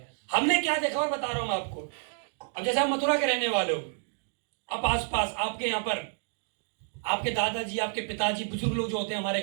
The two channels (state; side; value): silent; left; digital silence